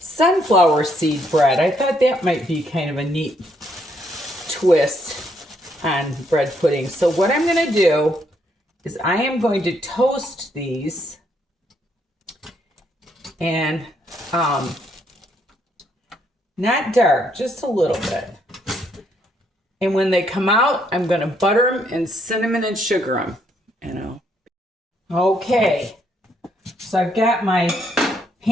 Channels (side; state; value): both; normal; correlation 0.72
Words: seed bread. I thought that might be kind of a neat twist on bread pudding. So what I'm going to do is I am going to toast these and not dark, just a little bit. And when they come out, I'm going to butter them and cinnamon and sugar them, Okay, so I've got my